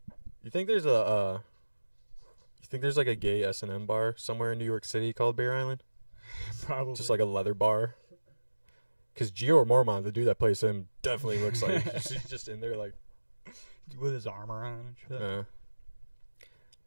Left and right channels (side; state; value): both; inverted; correlation -1.00